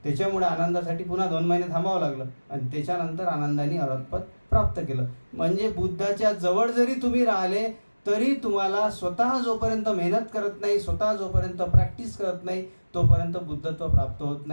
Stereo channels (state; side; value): inverted; both; correlation -1.00